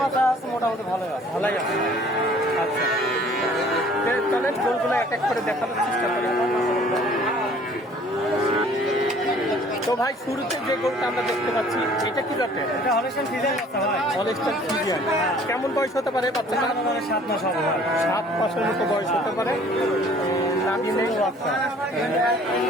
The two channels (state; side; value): normal; both; correlation 0.54